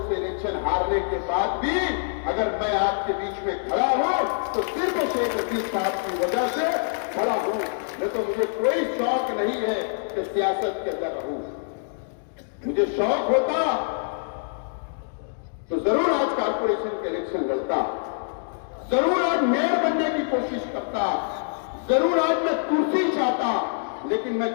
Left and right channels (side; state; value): right; silent; digital silence